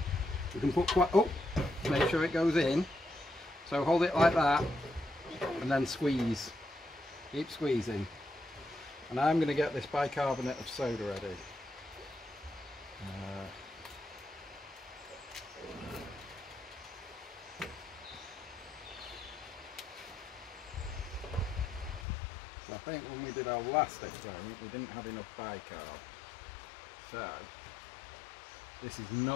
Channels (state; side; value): drops out; right; at 22.1 s